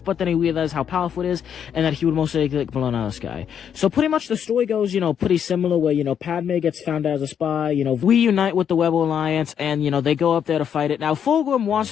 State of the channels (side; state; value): right; quieter; 8.4 dB